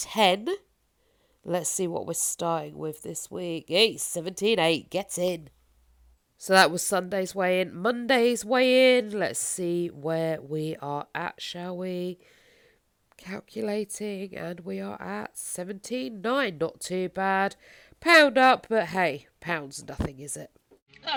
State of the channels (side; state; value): both; identical; correlation 1.00